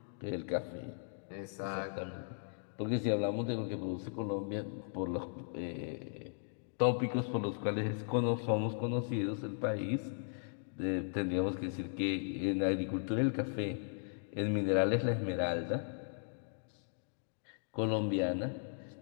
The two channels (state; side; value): silent; right; digital silence